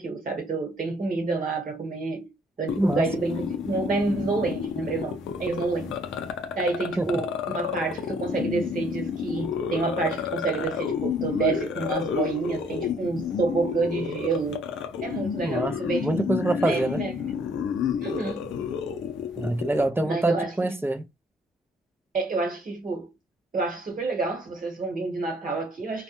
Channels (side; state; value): both; normal; correlation 0.62